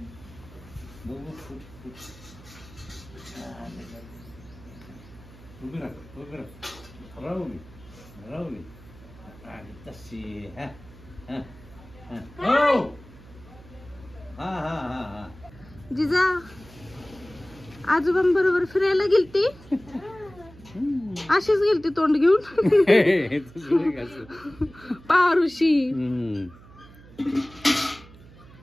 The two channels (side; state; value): right; noise; hum, 21 dB below the sound